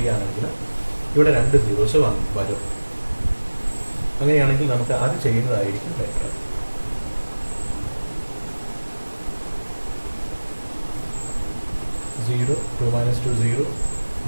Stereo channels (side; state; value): both; inverted; correlation -1.00